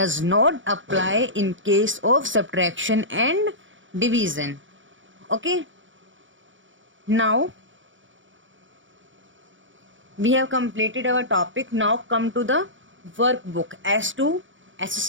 not apply in case of subtraction and division. Okay, now we have completed our topic. Now come to the workbook as to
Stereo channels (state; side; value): late; left; 0.56 ms